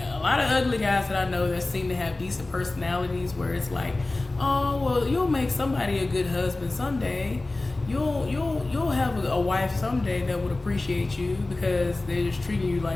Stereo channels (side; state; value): right; quieter; 3.0 dB